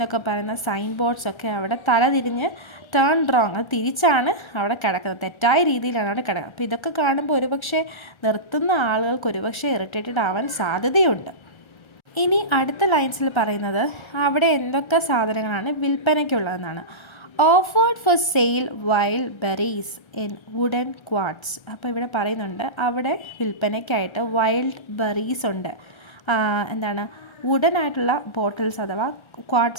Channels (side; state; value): right; late; 1.3 ms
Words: പറയുന്ന സൈൻ ബോർഡ്സൊക്കെ അവിടെ തലതിരിഞ്ഞ് ടേൺ റോങ്, അത് തിരിച്ചാണ് അവിടെ കിടക്കുന്നത്, തെറ്റായ രീതിയിലാണ് അവിടെ കിടക്കുന്നത്. അപ്പോൾ ഇതൊക്കെ കാണുമ്പോൾ ഒരുപക്ഷെ നിർത്തുന്ന ആളുകൾക്ക് ഒരുപക്ഷെ ഇറിറ്റേറ്റഡ് ആവാൻ സാധ്യതയുണ്ട്. ഇനി അടുത്ത ലൈൻസിൽ പറയുന്നത് അവിടെ എന്തൊക്കെ സാധനങ്ങളാണ് വിൽപ്പനയ്ക്കുള്ളതെന്നാണ്. Offered for sale wild berries in wooden quarts. അപ്പോൾ ഇവിടെ പറയുന്നുണ്ട് അവിടെ വിൽപ്പനയ്ക്കായിട്ട് വൈൽഡ് ബെറീസ് ഉണ്ട്. വുഡൻ ആയിട്ടുള്ള ബോട്ടിൽസ്, അഥവാ